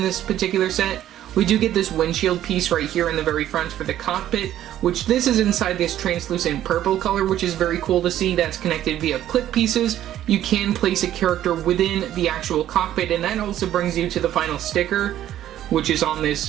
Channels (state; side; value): quieter; left; 12.1 dB